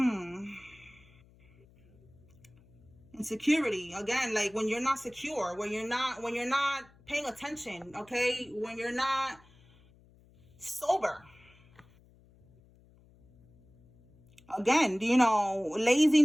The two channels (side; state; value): left; noise; hum, 28 dB below the sound